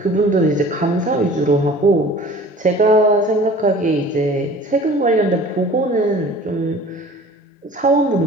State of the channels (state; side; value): normal; both; correlation 0.45